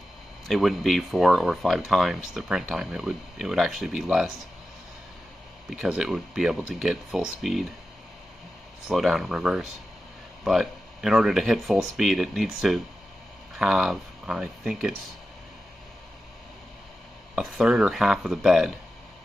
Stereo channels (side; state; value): both; normal; correlation 0.92